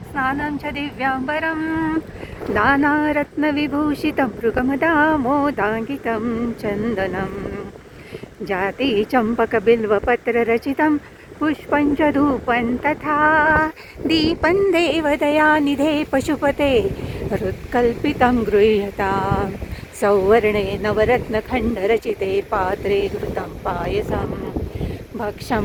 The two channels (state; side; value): identical; both; correlation 1.00